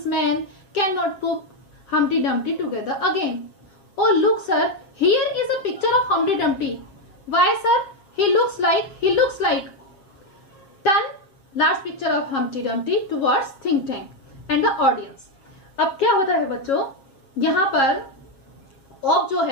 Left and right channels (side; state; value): right; late; 7.4 ms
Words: men cannot put Humpty Dumpty together again. Oh look sir, here is a picture of Humpty Dumpty. Why sir? He looks like. Turn large picture of Humpty Dumpty towards think tank and the audience. अब क्या होता है बच्चों, यहाँ पर of जो